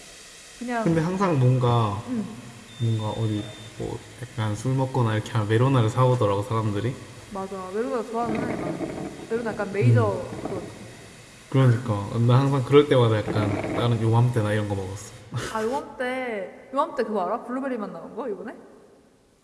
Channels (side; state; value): both; identical; correlation 1.00